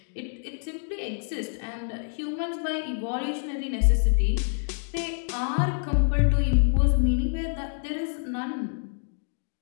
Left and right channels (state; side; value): silent; right; digital silence